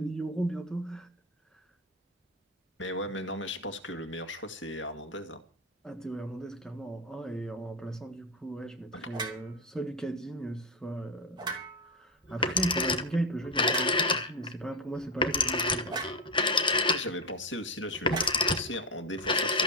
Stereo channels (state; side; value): normal; both; correlation 0.11